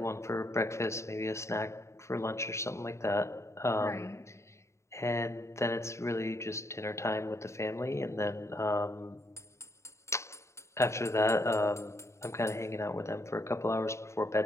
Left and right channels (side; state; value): right; late; 0.14 ms